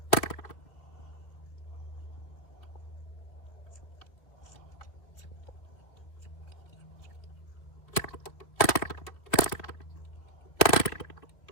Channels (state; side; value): late; right; 2.4 ms